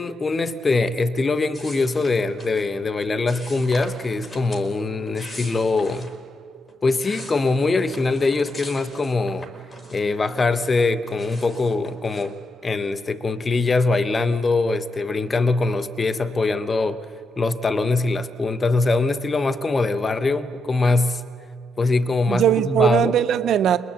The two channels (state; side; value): normal; both; correlation 0.82